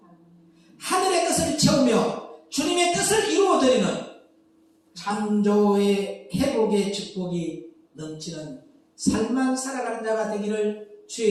하늘의 뜻을 채우며 주님의 뜻을 이루어드리는 창조의 회복의 축복이 넘치는 삶만 살아가는 자가 되기를 주의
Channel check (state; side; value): identical; both; correlation 1.00